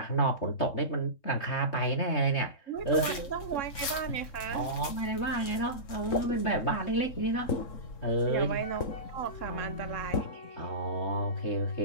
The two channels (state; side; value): late; right; 3.7 ms